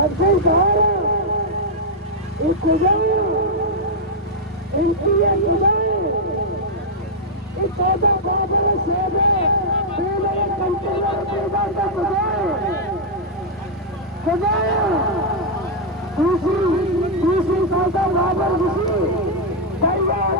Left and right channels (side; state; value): both; normal; correlation -0.05